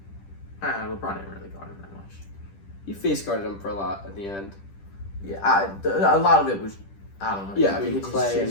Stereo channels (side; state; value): right; late; 10 ms